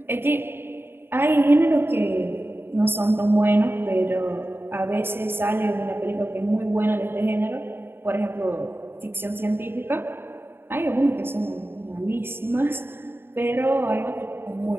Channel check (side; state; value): left; late; 0.11 ms